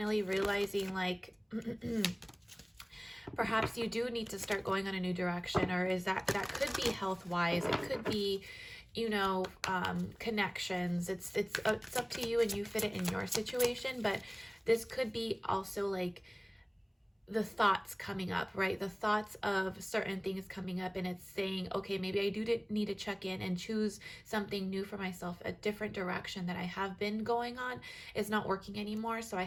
realizing, like, perhaps you do need to start going on a new direction, or is that could be health wise. It could be, you know, connections. It's up to you, and you fit it in your situation. But this could be also like the thoughts coming up, right? The thoughts of certain things coming up, and it's saying, okay, maybe I do need to check in and choose something new for myself. A different direction that I have been going on is not working anymore, so I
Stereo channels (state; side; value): identical; both; correlation 1.00